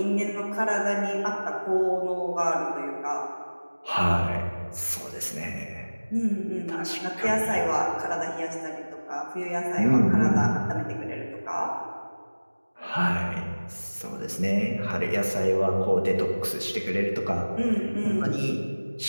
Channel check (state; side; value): inverted; both; correlation -1.00